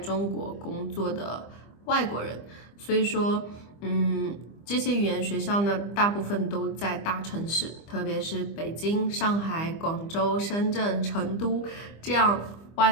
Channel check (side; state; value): right; late; 25 ms